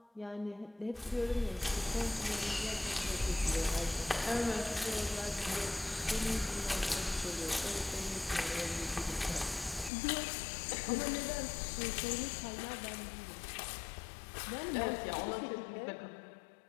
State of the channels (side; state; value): right; drops out; at 9.9 s